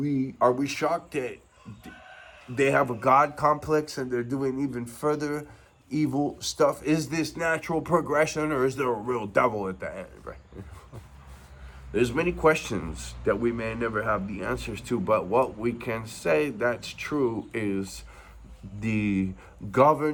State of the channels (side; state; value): both; identical; correlation 1.00